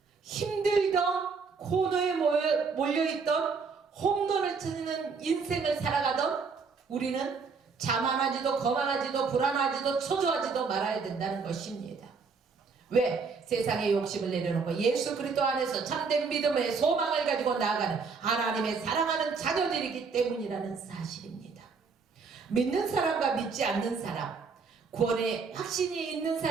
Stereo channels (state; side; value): quieter; left; 5.1 dB